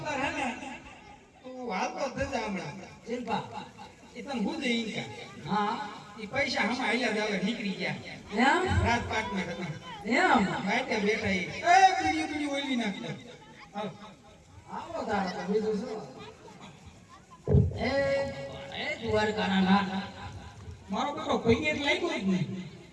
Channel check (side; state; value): both; identical; correlation 1.00